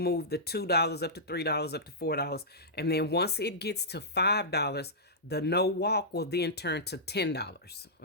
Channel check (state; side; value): normal; both; correlation -0.14